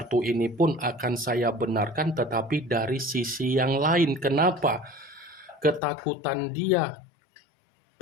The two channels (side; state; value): right; drops out; at 5.8 s